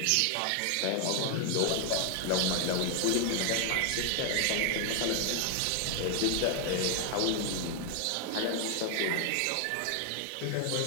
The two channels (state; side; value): different; both; correlation 0.00